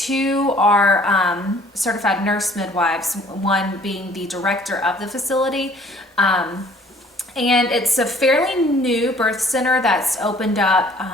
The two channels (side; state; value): both; normal; correlation 0.56